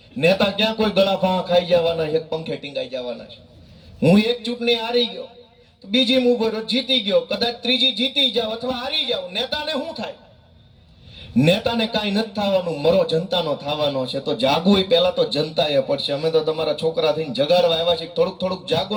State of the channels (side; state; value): both; identical; correlation 1.00